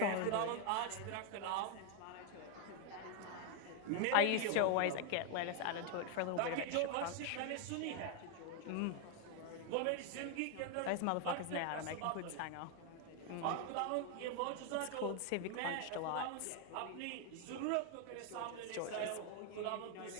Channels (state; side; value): different; both; correlation 0.00